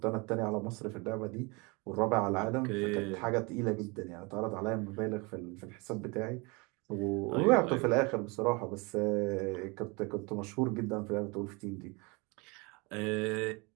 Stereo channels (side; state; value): left; quieter; 28.2 dB